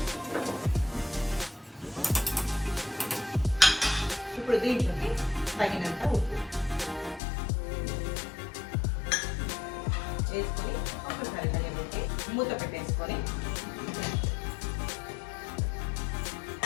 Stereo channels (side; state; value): right; drops out; at 7.2 s